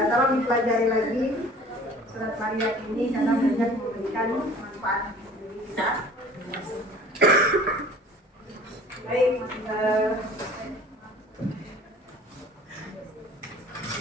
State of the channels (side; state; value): both; normal; correlation 0.47